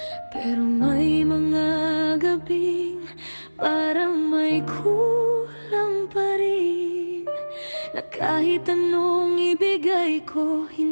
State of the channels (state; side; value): inverted; both; correlation -1.00